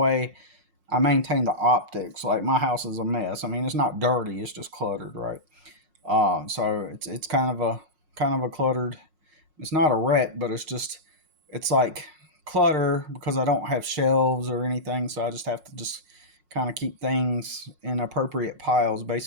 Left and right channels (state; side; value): late; left; 5.5 ms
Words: I maintain the optics. Like my house is a mess. I mean, it's not dirty; it's just cluttered, right? So it's kind of a cluttered. It's not a wreck, but it's like clutter because I don't have shelves or anything. So I just have to just kind of keep things in appropriate piles,